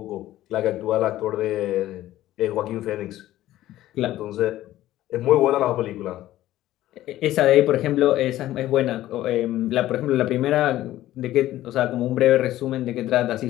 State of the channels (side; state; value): right; quieter; 14.5 dB